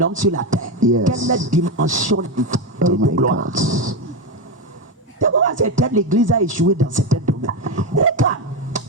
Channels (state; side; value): normal; both; correlation 0.12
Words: sur la terre. Yes. Quelle est la dimension Oh de my gloire? God. C'est pourquoi certaines l'église a échoué dans certains domaines. Regarde,